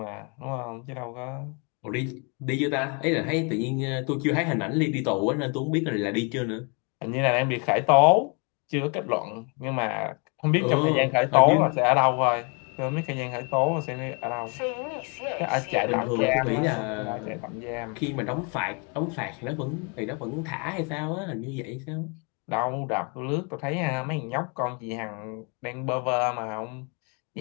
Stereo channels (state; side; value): quieter; right; 34.7 dB